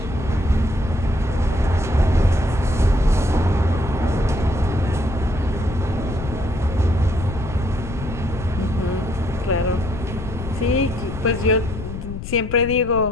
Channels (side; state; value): left; noise; rumble, 9 dB below the sound